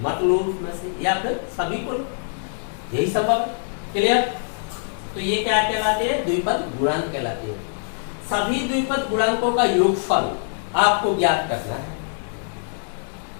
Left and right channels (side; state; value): right; silent; digital silence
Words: लो उसमें से या फिर सभी को लो, यही संभव है। क्लियर? तो ये क्या कहलाते हैं, द्विपद गुणांक कहलाते हैं। सभी द्विपद गुणांकों का योगफल आपको ज्ञात करना है,